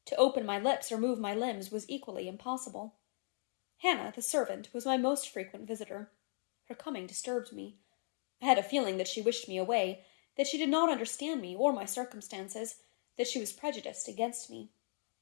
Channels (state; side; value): silent; right; 53 dB below the other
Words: To open my lips or move my limbs was equally impossible. Hannah, the servant, was my most frequent visitor. Her coming disturbed me. I had a feeling that she wished me away, that she did not understand me or my circumstances, that she was prejudiced against me.